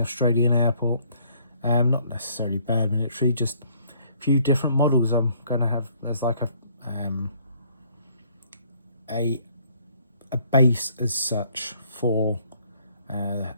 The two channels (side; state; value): both; inverted; correlation -0.63